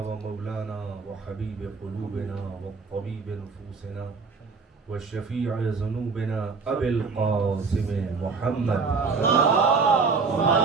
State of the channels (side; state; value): left; quieter; 4.7 dB